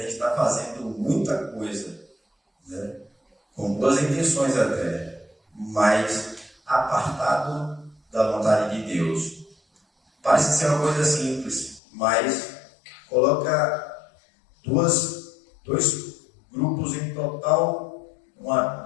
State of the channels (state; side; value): drops out; right; at 11.8 s